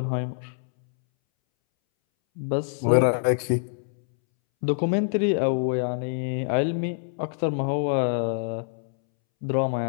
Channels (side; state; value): right; silent; 61 dB below the other